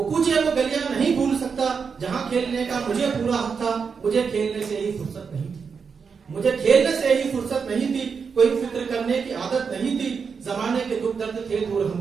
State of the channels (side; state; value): left; quieter; 5.8 dB